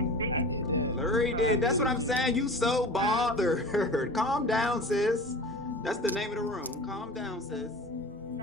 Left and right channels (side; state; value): both; normal; correlation 0.36